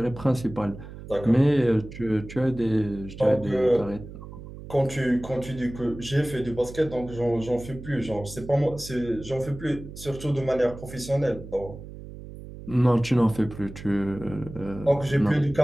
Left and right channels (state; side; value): noise; right; hum, 13 dB below the sound